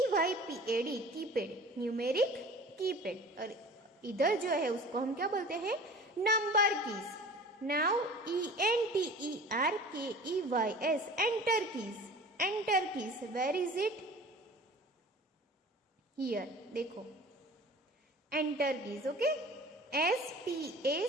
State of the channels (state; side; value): normal; both; correlation 0.43